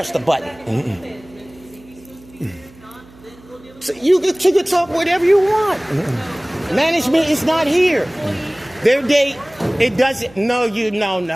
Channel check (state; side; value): noise; right; hum, 24 dB below the sound